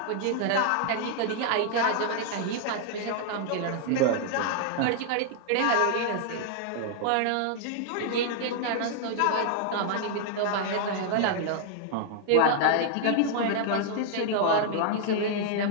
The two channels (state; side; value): different; both; correlation -0.01